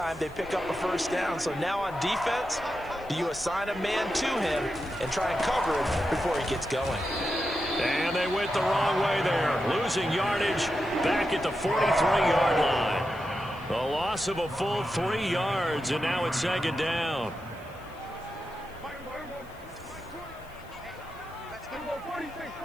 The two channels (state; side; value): noise; left; hiss, 27 dB below the sound